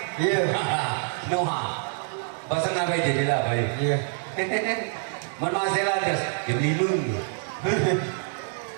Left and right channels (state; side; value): silent; left; digital silence